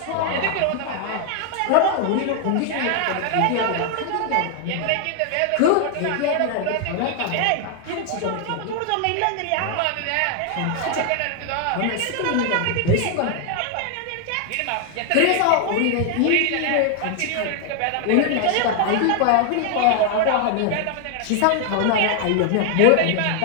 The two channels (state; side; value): different; both; correlation 0.00